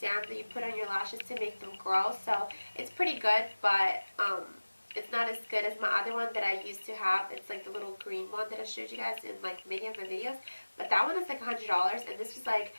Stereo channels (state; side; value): inverted; both; correlation -1.00